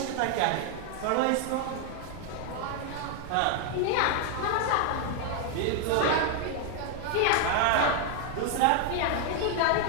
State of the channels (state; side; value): different; both; correlation 0.00